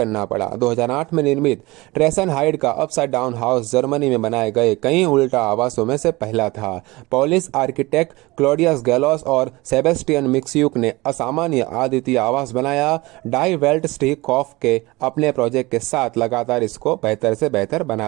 पड़ा। 2008 में निर्मित ट्रेसन हाइड का अपसाइड डाउन हाउस जर्मनी में बनाए गए कई उल्टा आवासों में से पहला था। पोलिश आर्किटेक्ट क्लॉडियस गैलोस और सेबेस्टियन मिक्स्यूक ने असामान्य अद्वितीय आवास बनाया। डाई वेल्ट स्टीकॉफ के अपने प्रोजेक्ट के साथ लगातार इसको बेहतर से बेहतर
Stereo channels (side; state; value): left; quieter; 21.8 dB